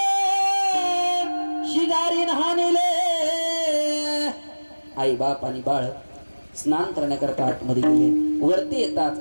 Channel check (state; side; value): inverted; both; correlation -1.00